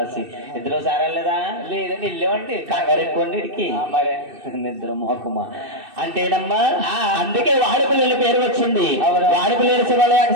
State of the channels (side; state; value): left; late; 2.6 ms